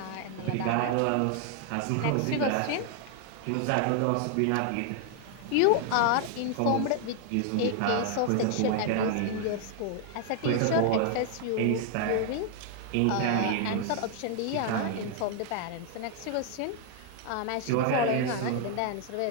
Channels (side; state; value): both; different; correlation 0.00